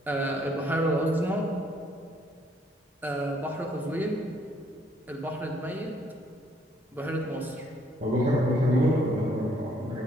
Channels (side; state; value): both; normal; correlation 0.67